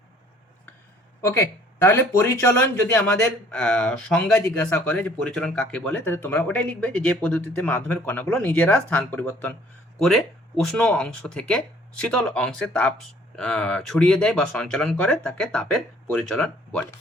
ওকে, তাহলে পরিচলন যদি আমাদের সংজ্ঞা জিজ্ঞাসা করে যে পরিচলন কাকে বলে, তাহলে তোমরা ওটাই লিখবে যে পদ্ধতিতে মাধ্যমের কণাগুলো নিজেরা স্থান পরিবর্তন করে উষ্ণ অংশ থেকে শীতল অংশে তাপ ছড়িয়ে দেয় বা সঞ্চালন করে, তাকে তাপের পরিচলন বলে।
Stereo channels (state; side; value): normal; both; correlation 0.57